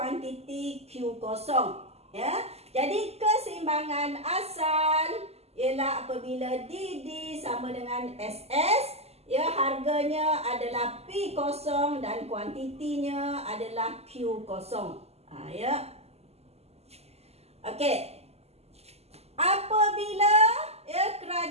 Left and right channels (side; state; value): left; late; 0.30 ms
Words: Q0. Ya, jadi keseimbangan asal ialah apabila DD sama dengan SS, ya harganya adalah P0 dan kuantitinya adalah Q0. Ya. Okey. Apabila ya